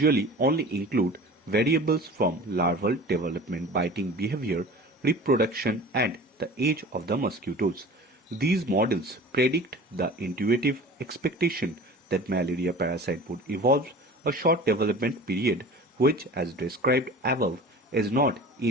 only include variables from larval development, biting behavior, reproduction, and the age of the mosquitoes. These models predict the intuitive expectation that malaria parasite would evolve a short development period, which, as described above, is not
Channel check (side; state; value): both; normal; correlation 0.40